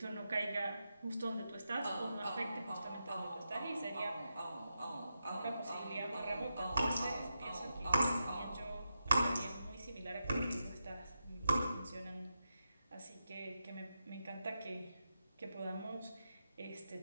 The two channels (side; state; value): both; inverted; correlation -0.88